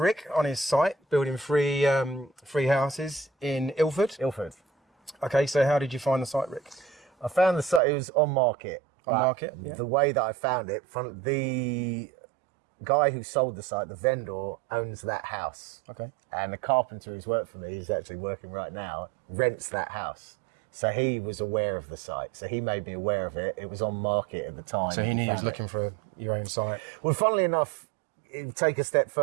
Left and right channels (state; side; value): drops out; left; at 7.8 s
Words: on his site, building three houses in Ilford. Ilford. Okay, so how did you find the site, Rick? I found the site, it was on market. On market, yeah. The way that I found it, from the guy who sold the site, the vendor, owns that house. Okay. And the carpenter who's worked for me, who's actually working right now, rents that house. So he was aware of the site. So he made me aware of it. It was on market at the time. So he knew he was looking for your own site. Well, funnily enough, take a step